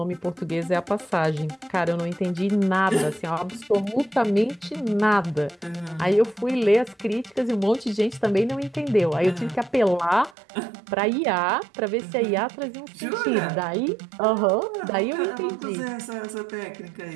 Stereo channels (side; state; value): left; drops out; at 10.4 s